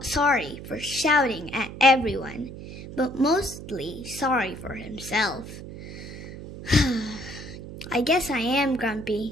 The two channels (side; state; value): right; noise; hum, 12 dB below the sound